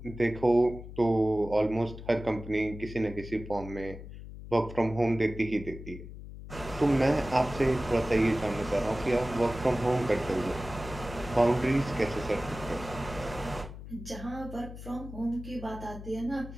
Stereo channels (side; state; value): left; noise; hum, 12 dB below the sound